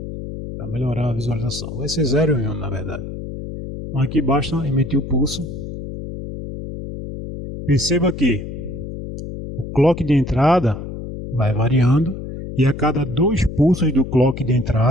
para melhorar a visualização. Vai ser 0 e 1 na verdade. Então aqui basta emitir o pulso. Perceba que o clock de entrada vai variando e a cada 2 pulsos do clock de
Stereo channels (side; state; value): left; noise; hum, 9 dB below the sound